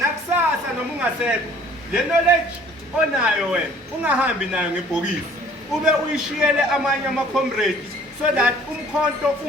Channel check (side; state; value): both; normal; correlation 0.54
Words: noma ungasekho le knowledge onayo wena ungahambi nayo ngebhokisi, ube uyishiyele amanye ama-comrades so that umkhonto